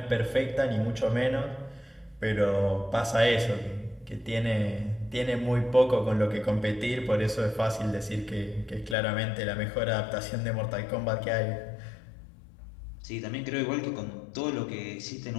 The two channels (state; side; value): drops out; right; at 9.0 s